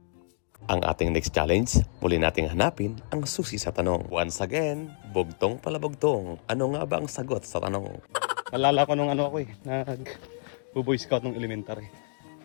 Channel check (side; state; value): right; silent; digital silence